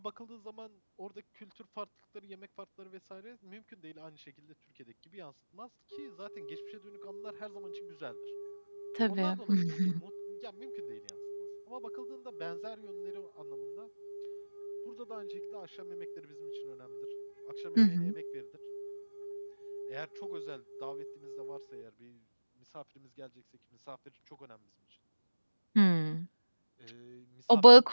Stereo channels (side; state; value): both; inverted; correlation -1.00